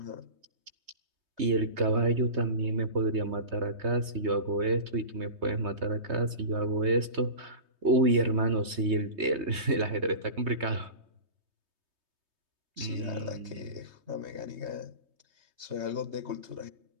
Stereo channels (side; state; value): left; late; 3.2 ms